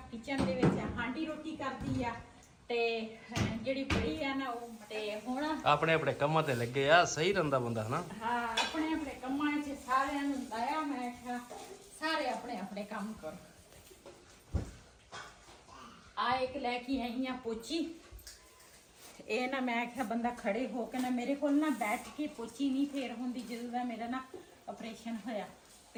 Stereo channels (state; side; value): identical; both; correlation 1.00